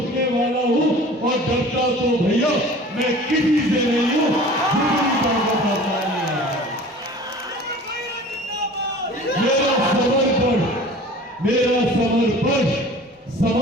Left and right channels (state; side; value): normal; both; correlation 0.43